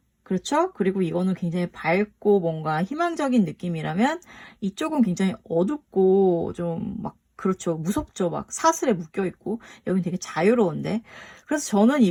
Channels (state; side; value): identical; both; correlation 1.00